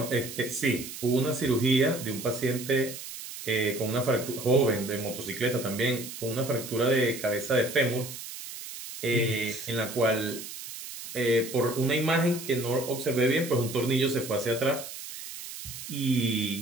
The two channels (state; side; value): noise; right; hiss, 11 dB below the sound